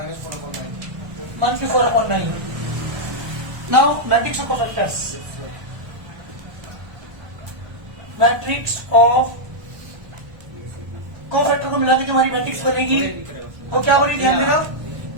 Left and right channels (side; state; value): left; late; 1.1 ms